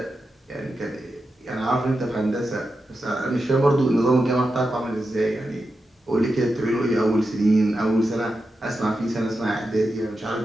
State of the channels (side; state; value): both; normal; correlation 0.89